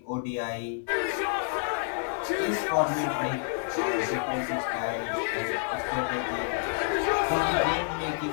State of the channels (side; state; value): right; silent; digital silence